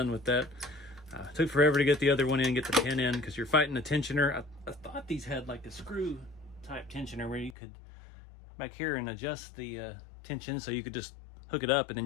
with that. It took forever to get the other one in, get the pin in, because you're fighting the tensioner. I thought these had like a screw type tensioner where you could back here and adjust the tension, so you could just hook it up and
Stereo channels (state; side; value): drops out; right; at 7.6 s